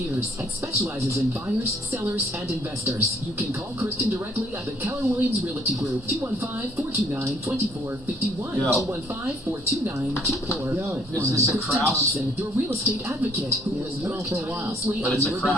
and specializes in buyers, sellers, and investors. You can call Kristen directly at the Keller Williams Realty Group, 215-429-2451, 215-429-2451. Is this a Kristen Kraus? Thompson, your real estate advocate, who will work tirelessly on your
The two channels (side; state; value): both; normal; correlation 0.63